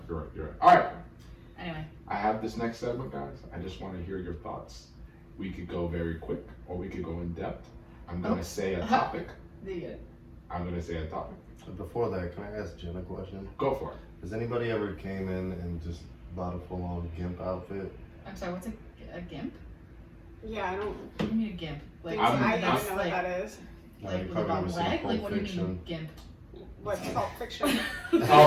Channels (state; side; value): identical; both; correlation 1.00